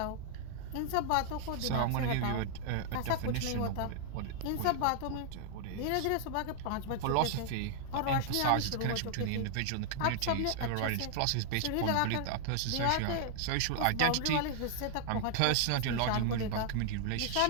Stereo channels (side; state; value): both; different; correlation 0.00